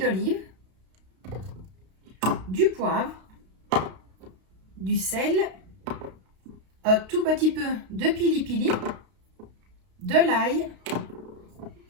du poivre, du sel, un tout petit peu de pili-pili, de l'ail,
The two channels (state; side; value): late; left; 32 ms